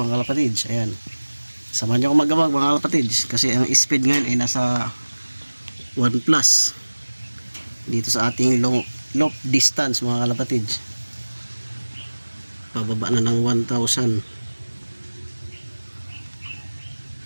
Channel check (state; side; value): inverted; both; correlation -1.00